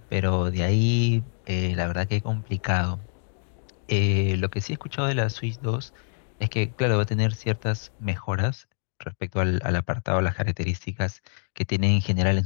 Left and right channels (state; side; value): silent; right; digital silence